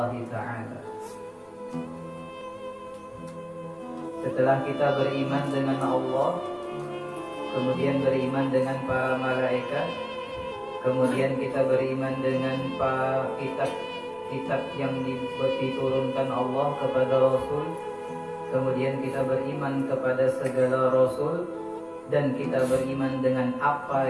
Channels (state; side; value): identical; both; correlation 1.00